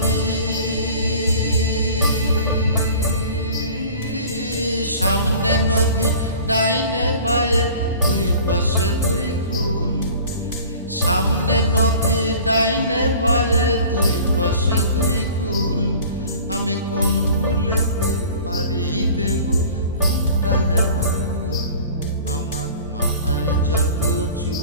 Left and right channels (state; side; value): inverted; both; correlation -0.44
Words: সামনে নদী ডাইনে বায়ে দুই পাশে দুই কুল। সামনে নদী ডাইনে বায়ে দুই পাশে দুই কুল। আমি কোন কুলেতে পারি দেব কোনটাই আমার কুল। আমার মাথায় যত